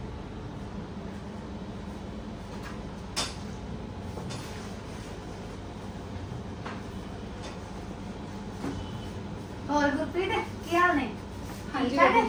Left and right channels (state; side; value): identical; both; correlation 1.00